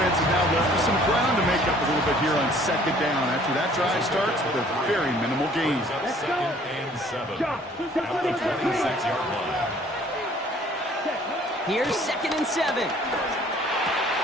is now left with some ground to make up a little bit here on 2nd down. After that drive starts with a very minimal gain. Brings up 2nd and 7. At the 26-yard line. Here's 2nd and 7.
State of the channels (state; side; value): normal; both; correlation 0.56